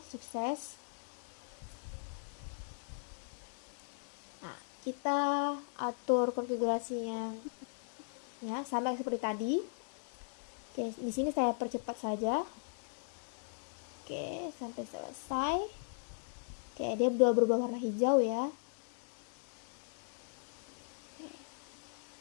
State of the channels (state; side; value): silent; right; digital silence